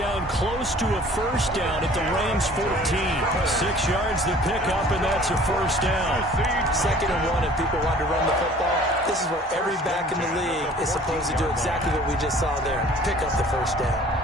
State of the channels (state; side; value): normal; both; correlation 0.50